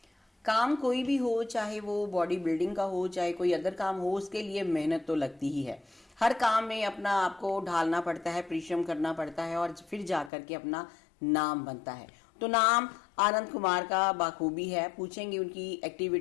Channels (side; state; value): right; drops out; at 10.3 s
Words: काम कोई भी हो, चाहे वो बॉडी बिल्डिंग का हो चाहे कोई अदर काम हो, उसके लिए मेहनत तो लगती ही है। हर काम में अपना आपको ढालना पड़ता है, परिश्रम करना पड़ता है और फिर जा करके अपना नाम बनता है। तो नाम आनंद कुमार का बाखूबी है। पूछेंगे उनकी